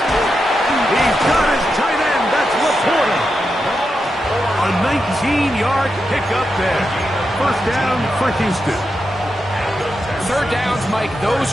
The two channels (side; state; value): both; normal; correlation 0.87